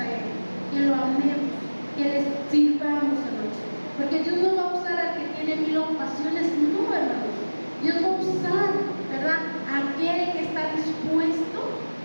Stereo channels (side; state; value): both; inverted; correlation -1.00